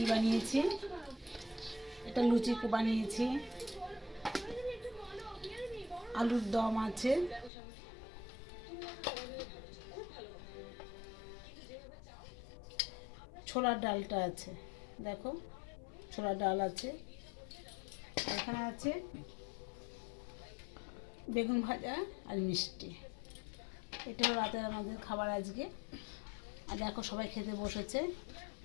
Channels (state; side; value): drops out; right; at 7.5 s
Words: বানিয়েছি। এটা লুচি বানিয়েছি, আলুর দম আছে, ছোলার ডালটা আছে, দেখো ছোলার ডাল আছে, এখানে আছে বেগুন ভাজা আর মিষ্টি। এটা হলো রাতের আমাদের খাবার আজকে। আর দেখো সবাই খেতে বসেছে।